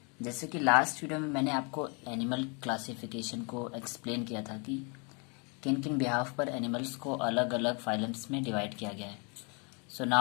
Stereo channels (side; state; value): right; quieter; 34.0 dB